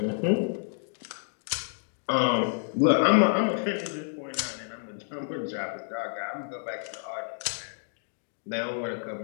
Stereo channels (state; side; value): silent; right; 58 dB below the other